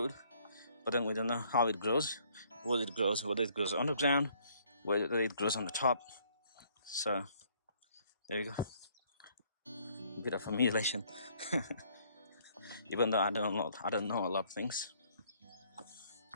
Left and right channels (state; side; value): inverted; both; correlation -0.63